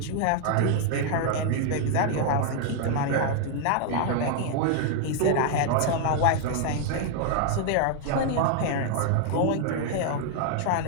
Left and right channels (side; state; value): both; different; correlation 0.00